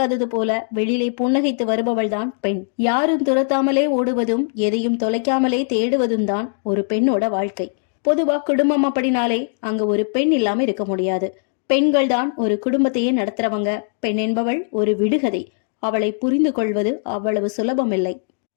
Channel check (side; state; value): right; silent; digital silence